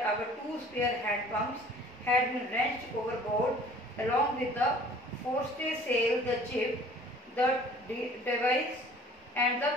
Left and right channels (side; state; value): both; normal; correlation 0.50